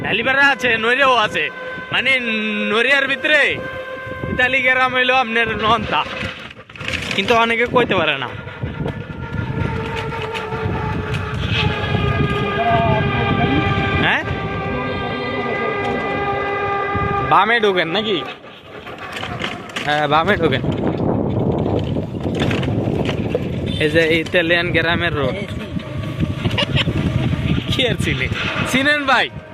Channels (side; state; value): both; identical; correlation 1.00